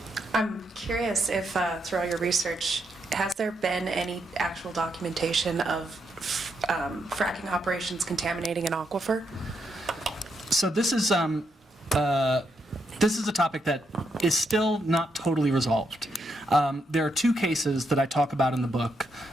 I'm curious if through all your research, has there been any actual documentation of fracking operations contaminating an aquifer? So this is a topic that is still not totally resolved. There are two cases that I talk about in the book.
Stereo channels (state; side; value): normal; both; correlation 0.80